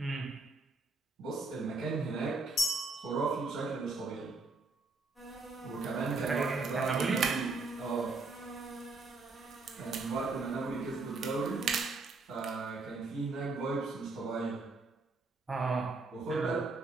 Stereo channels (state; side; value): quieter; left; 3.6 dB